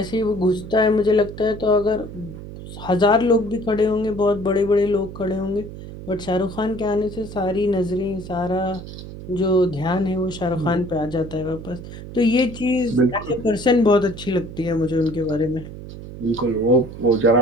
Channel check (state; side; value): noise; right; hum, 12 dB below the sound